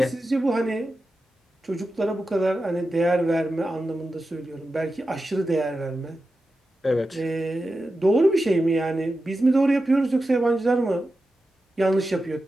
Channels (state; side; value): normal; both; correlation 0.91